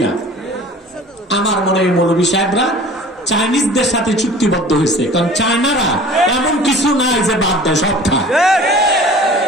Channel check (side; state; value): both; normal; correlation 0.44